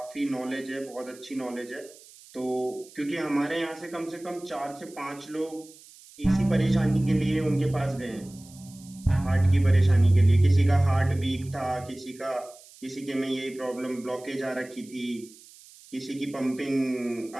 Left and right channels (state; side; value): noise; right; hiss, 22 dB below the sound